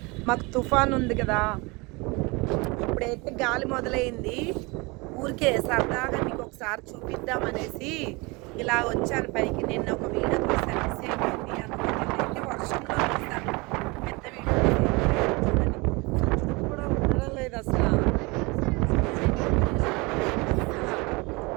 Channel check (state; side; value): quieter; left; 26.3 dB